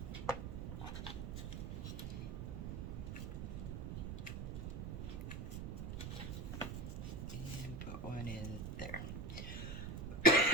One in there.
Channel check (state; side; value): noise; right; rumble, 4 dB below the sound